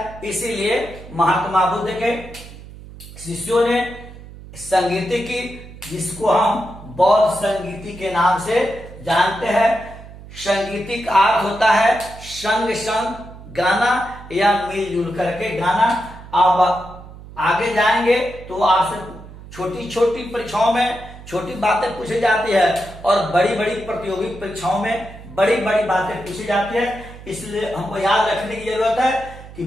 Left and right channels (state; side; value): noise; right; hum, 16 dB below the sound